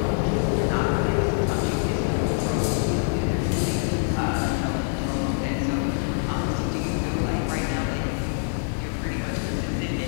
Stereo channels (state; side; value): silent; right; digital silence